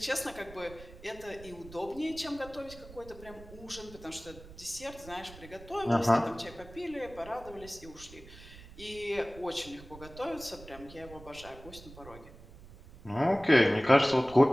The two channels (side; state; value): right; noise; rumble, 18 dB below the sound